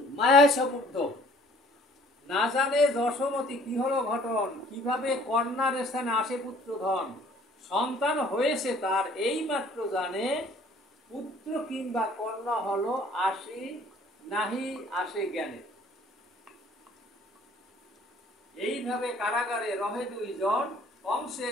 মায়ায় সপুদ্ধ, না জানে যশোমতি কি হলো ঘটন, কিভাবে কন্যার স্থানে আসে পুত্র ধন, সন্তান হয়েছে তার এই মাত্র জানে, পুত্র কিংবা কন্যা হলো আসি নাহি আসে জ্ঞানে। এইভাবে কারাগারে রহে দুইজন,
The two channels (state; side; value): normal; both; correlation 0.55